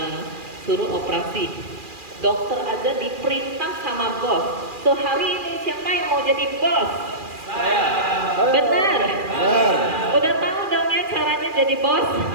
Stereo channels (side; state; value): left; late; 2.4 ms